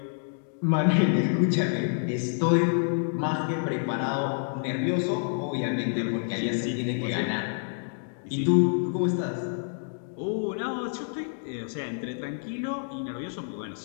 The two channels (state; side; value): silent; right; digital silence